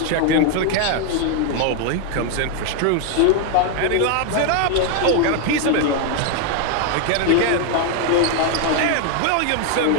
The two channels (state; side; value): different; both; correlation 0.01